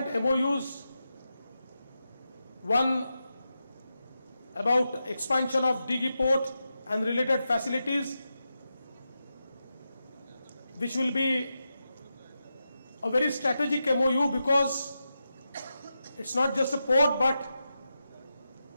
MOUs. One about expansion of Dighi Port and related facilities, which will be a very strategic MOU because it's not just a port, but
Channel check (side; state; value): both; inverted; correlation -0.89